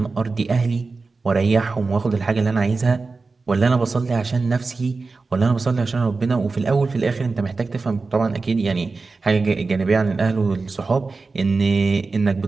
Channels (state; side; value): quieter; left; 4.0 dB